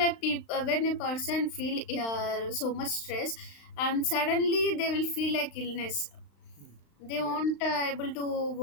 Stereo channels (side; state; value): right; late; 35 ms